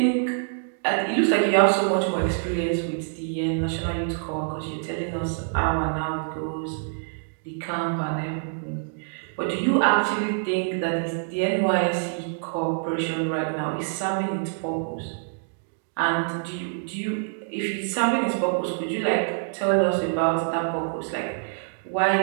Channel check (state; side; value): silent; left; digital silence